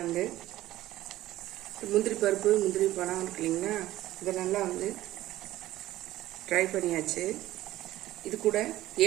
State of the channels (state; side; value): quieter; left; 15.3 dB